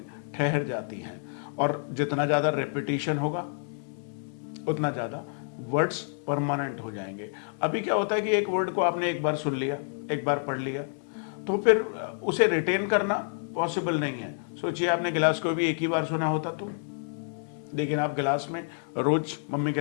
ठहर जाती हैं और जितना ज़्यादा रेपिटेशन होगा उतना ज़्यादा वर्ड्स परमानेंट हो जाएंगे। अभी क्या होता है कि एक वर्ड को आपने एक बार सुन लिया, एक बार पढ़ लिया, तो फिर उसे रिटेन करना पॉसिबल नहीं है। सोचिए आपने गिलास को भी एक ही बार सुना होता तो, लेकिन आप गिलास में रोज मम्मी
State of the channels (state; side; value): silent; right; digital silence